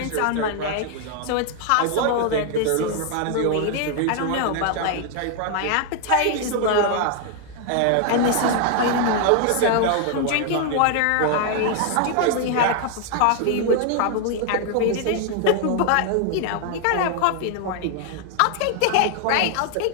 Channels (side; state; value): both; different; correlation 0.00